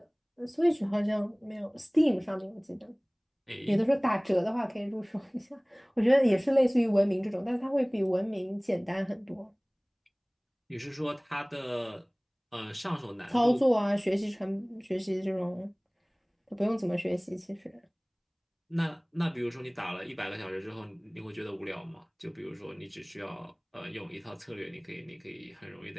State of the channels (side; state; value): both; identical; correlation 1.00